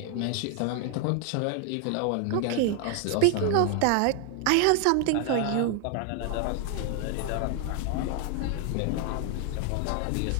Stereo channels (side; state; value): both; different; correlation 0.01